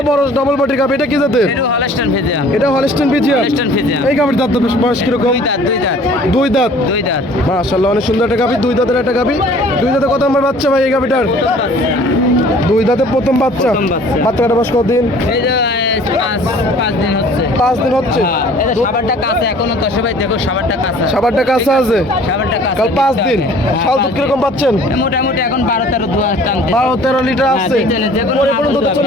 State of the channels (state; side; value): normal; both; correlation 0.51